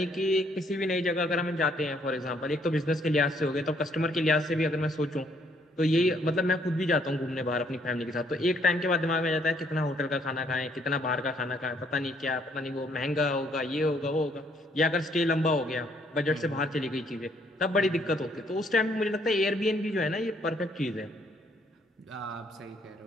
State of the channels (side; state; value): both; normal; correlation 0.67